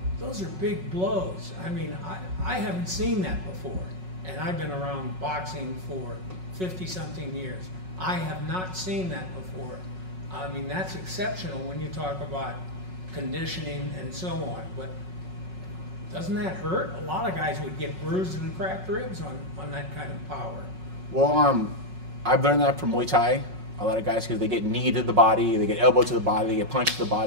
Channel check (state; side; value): late; left; 5.4 ms